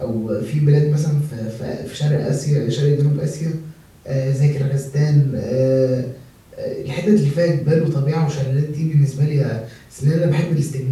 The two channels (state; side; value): identical; both; correlation 1.00